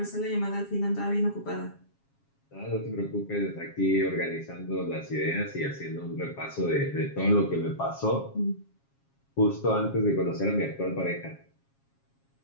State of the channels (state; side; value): late; right; 7.3 ms